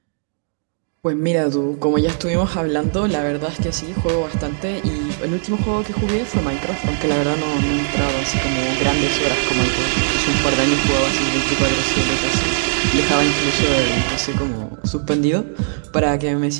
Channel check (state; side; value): silent; left; digital silence